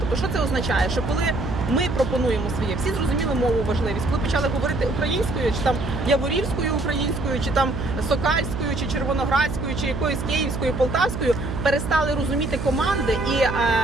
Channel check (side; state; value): right; noise; hum, 5 dB below the sound